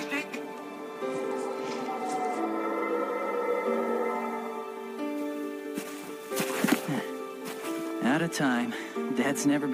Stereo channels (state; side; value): identical; both; correlation 1.00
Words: staying. Out of time. Dad's never